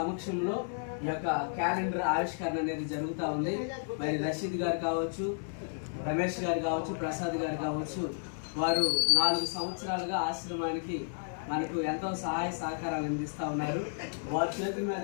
ఈ యొక్క క్యాలెండర్ ఆవిష్కరణ అనేది జరుగుతూ ఉంది. మరి రషీద్ గారు కావచ్చు, రమేష్ గారు కావచ్చు, ప్రసాద్ గారు కావచ్చు, వారు 4 సంవత్సరాలుగా ఆశ్రమానికి మనకు ఎంతో సహాయ సహకారాలు అందిస్తూ ఉన్నారు. వారి చేతుల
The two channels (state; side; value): silent; right; digital silence